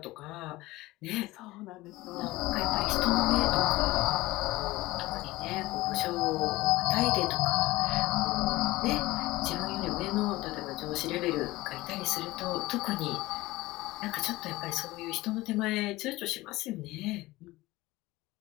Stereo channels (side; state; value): right; quieter; 19.2 dB